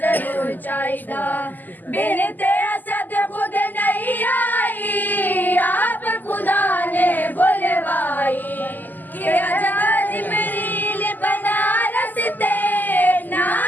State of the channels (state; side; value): late; right; 0.086 ms